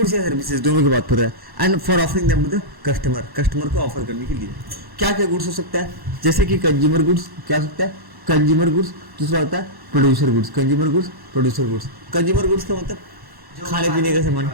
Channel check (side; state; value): left; late; 1.1 ms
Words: या सर्विसेज दोनों की बात कर रहा है। And for offering them to the customer को ऑफर करने के लिए क्या क्या गुड्स हो सकता है, जैसे कि कंज्यूमर गुड्स, क्या हो सकता है, कंज्यूमर गुड्स। दूसरा होता है producer goods, consumer goods, producer goods. Consumer goods का मतलब खाने पीने का सामान,